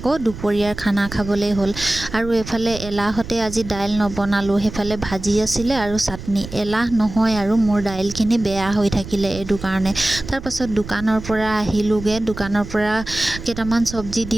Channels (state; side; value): noise; right; rumble, 12 dB below the sound